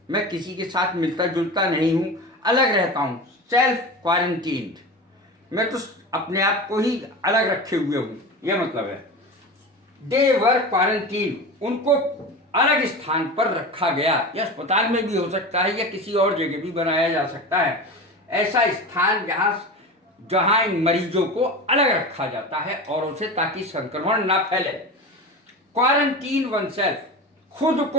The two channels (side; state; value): both; normal; correlation 0.28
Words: मैं किसी के साथ मिलता जुलता नहीं हूं, अलग रहता हूं। सेल्फ क्वारंटीन, मैं तो अपने आप को ही अलग रखे हुए हूं, यह मतलब है। दे वर क्वारंटीन, उनको अलग स्थान पर रखा गया। यह अस्पताल में भी हो सकता है या किसी और जगह भी बनाया जा सकता है, ऐसा स्थान जहां इन मरीजों को अलग रखा जाता है औरों से, ताकि संक्रमण ना फैले। क्वारंटीन वन सेल्फ, खुद